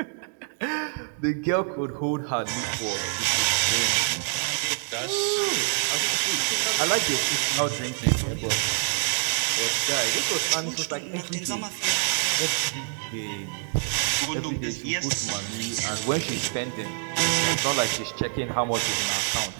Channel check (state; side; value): silent; left; 61 dB below the other